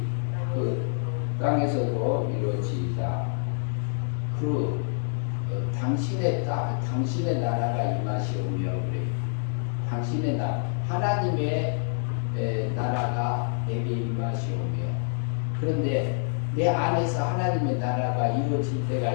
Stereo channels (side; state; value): right; silent; digital silence